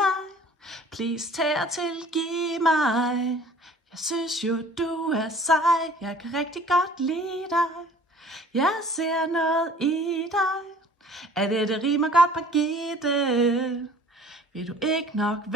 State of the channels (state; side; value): normal; both; correlation 0.50